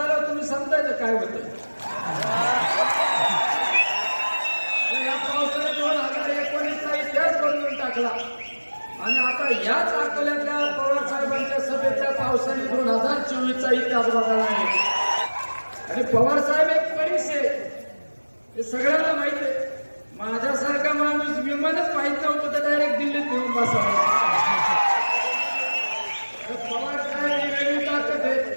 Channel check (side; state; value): both; inverted; correlation -1.00